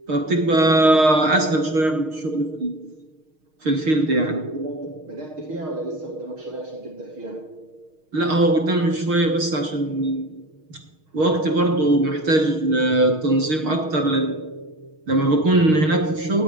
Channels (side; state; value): left; late; 6.4 ms